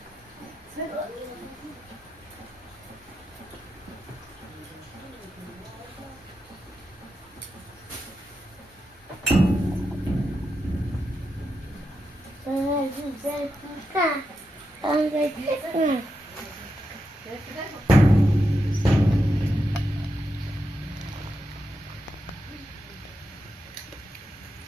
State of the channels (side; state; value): both; normal; correlation 0.87